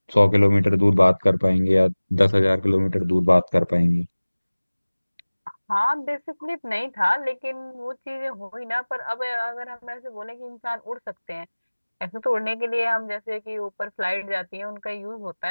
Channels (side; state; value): both; inverted; correlation -1.00